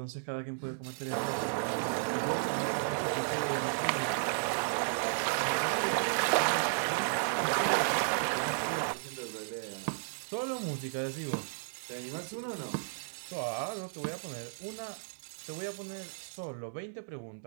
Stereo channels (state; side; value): silent; left; digital silence